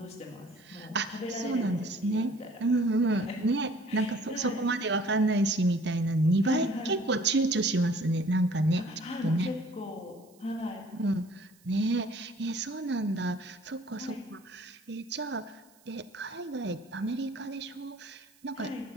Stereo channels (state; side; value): noise; right; hiss, 30 dB below the sound